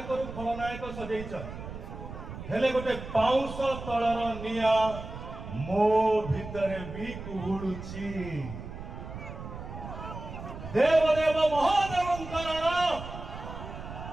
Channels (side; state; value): right; noise; rumble, 10 dB below the sound